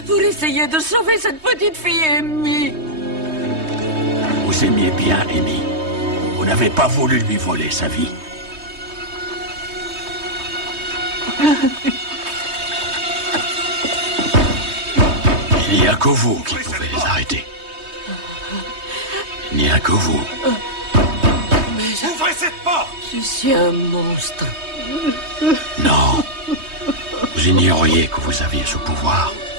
pour essayer de sauver cette petite fille Amy. Vous aimiez bien Amy. Vous n'avez pas voulu lui voler sa vie. Il n'y a que vous qui pouvez les arrêter. Il n'y a que vous. Mais ouvrez cette porte! Je suis un monstre. Non. Vous ignoriez que vous aviez ce pouvoir.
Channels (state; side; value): late; left; 3.2 ms